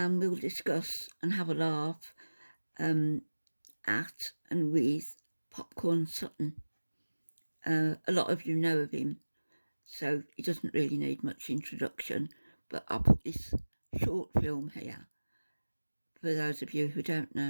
we'll discuss and have a laugh at and with Popcorn Sutton. A lot of you know of him, so he doesn't really need much introduction, but I'll put this short film here for those of you who don't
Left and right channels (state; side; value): inverted; both; correlation -1.00